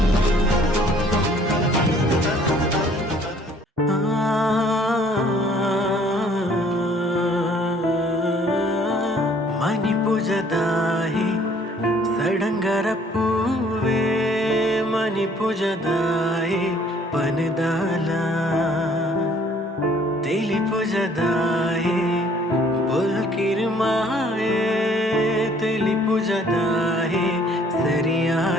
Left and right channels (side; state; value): both; normal; correlation 0.59